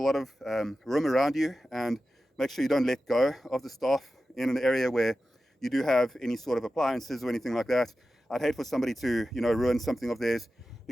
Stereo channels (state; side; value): normal; both; correlation 0.93